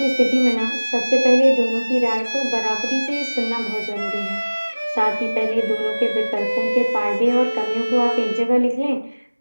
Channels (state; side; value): inverted; both; correlation -1.00